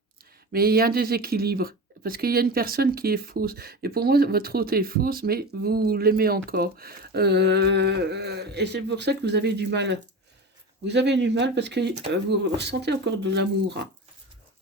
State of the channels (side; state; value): both; normal; correlation 0.28